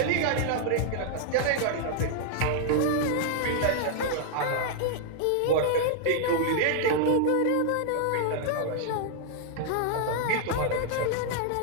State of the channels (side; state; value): both; different; correlation 0.00